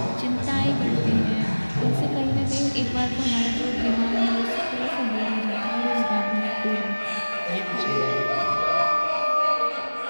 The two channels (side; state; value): both; inverted; correlation -1.00